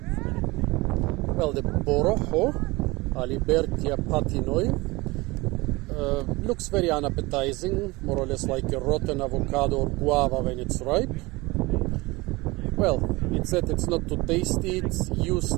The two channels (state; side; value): quieter; left; 22.7 dB